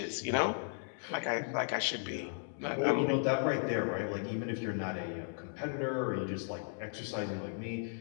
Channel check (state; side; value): silent; right; digital silence